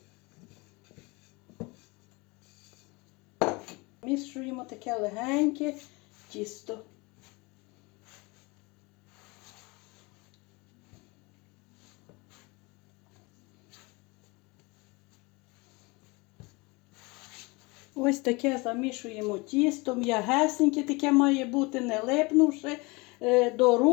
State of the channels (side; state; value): right; quieter; 25.8 dB